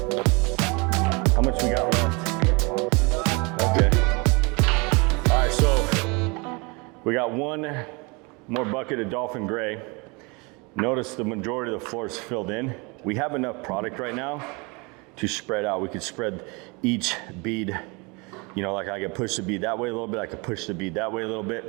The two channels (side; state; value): left; quieter; 28.5 dB